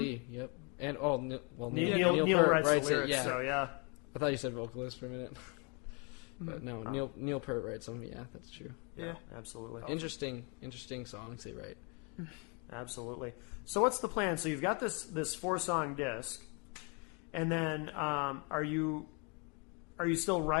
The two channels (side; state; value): right; quieter; 34.0 dB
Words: yep. And, Neil Peart writes the lyrics, it, yeah. so yeah. I thought you said vocalist for a minute. But no, Neil Peart writes them. Yeah, that's true. Yeah. Absolutely. Interesting songs they write. Absolutely. So what's the plan? So you've got this 4-song disc, and then are you still